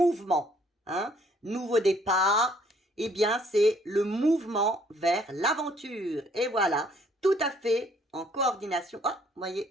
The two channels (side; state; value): both; normal; correlation 0.63